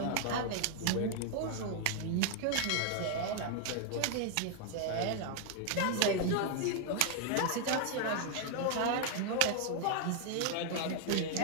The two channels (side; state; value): both; different; correlation 0.00